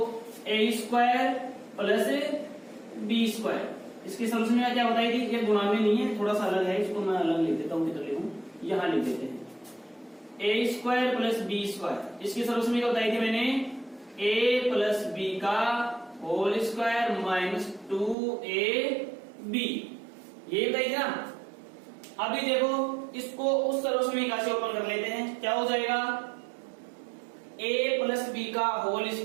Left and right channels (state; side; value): drops out; left; at 18.2 s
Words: a square plus b square. इसकी सर्वसमीकरण क्या बताई थी, ये गुणा में नहीं है, थोड़ा सा अलग है, इसको मैं अलग लिख देता हूं, किधर लिखूं, यहां लिख देते हैं a square plus b square. इसकी सर्वसमीकरण बताई थी मैंने a प्लस b का होल स्क्वायर माइनस 2ab, ये बताई थी ना। अभी देखो इसको उस सर्वसमीकरण से ओपन कर लेते हैं, क्या हो जाएगा a प्लस b का होल